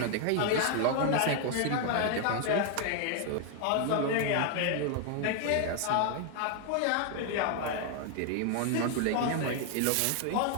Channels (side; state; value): both; different; correlation 0.00